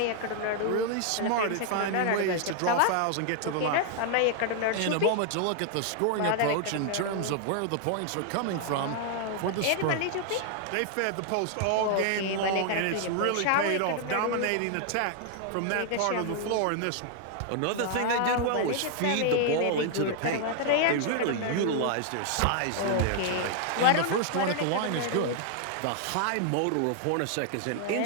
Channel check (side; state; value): both; different; correlation 0.00